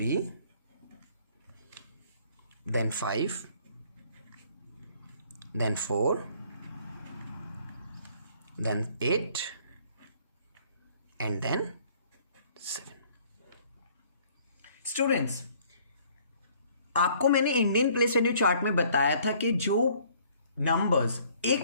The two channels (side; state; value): both; inverted; correlation -0.59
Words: Then 5, then 4, then 8, and then 7. Students, आपको मैंने Indian place value chart में बताया था कि जो numbers